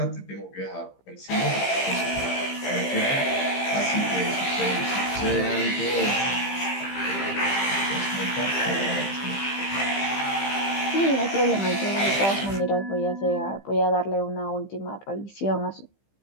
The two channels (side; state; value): right; late; 15 ms